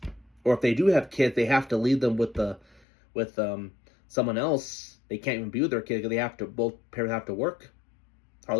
Or if they do have kids, they have to leave them with someone else. They can't even be with their kid because both parents have to work.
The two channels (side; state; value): right; drops out; at 2.8 s